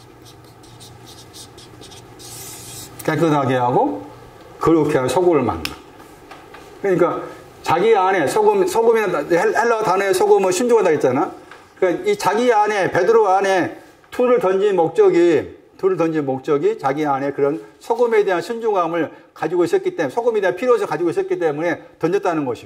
깨끗하게 하고 그렇게 하고 소금을 만나. 그러니까 자기 안에 소금이나 헬라어 단어에 소금은 신중하다 했잖아. 그러니까 이 자기 안에 베드로 안에 툴을 던진 목적이 자기 안에 그런 소금에 대한 신중함을 가지고 있었기 때문에, 소금에 대한 필요성을 가지고 있었기 때문에 던졌다는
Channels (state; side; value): identical; both; correlation 1.00